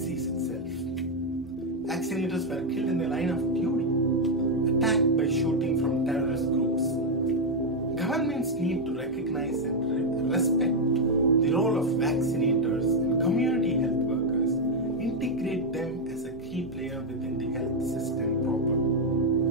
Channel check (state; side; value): normal; both; correlation 0.01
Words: itself. Vaccinators were killed in the line of duty, attacked by shooting from terrorist groups. Governments need to recognize and respect the role of vaccinators and community health workers, integrate them as a key player within the health system proper,